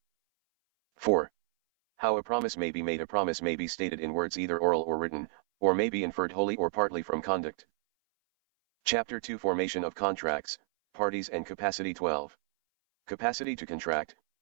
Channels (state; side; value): silent; left; 57 dB below the other